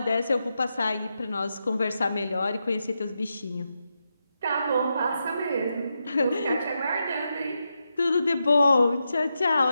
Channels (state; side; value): inverted; both; correlation -0.86